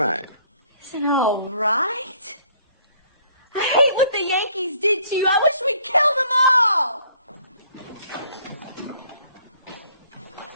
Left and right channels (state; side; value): inverted; both; correlation -0.61